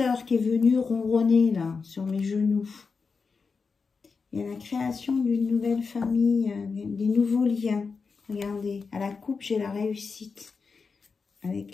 qui est venu ronronner, là, sur mes genoux. Il y a la création d'une nouvelle famille, des nouveaux liens. Regardez, à la coupe, j'ai la réussite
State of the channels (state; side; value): quieter; right; 4.9 dB